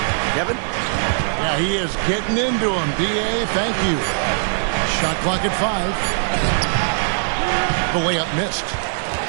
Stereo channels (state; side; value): silent; left; digital silence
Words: Kevin? Yeah, he is getting into him. D.A., thank you. Shot clock at 5. The layup missed.